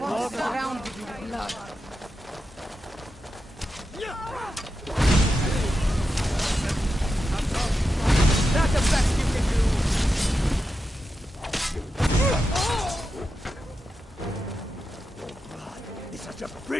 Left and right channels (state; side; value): normal; both; correlation 0.89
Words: walk around in blood. That's the best you can do! It's such a